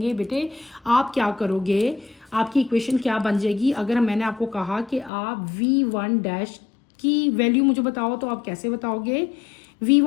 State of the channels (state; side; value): drops out; right; at 5.1 s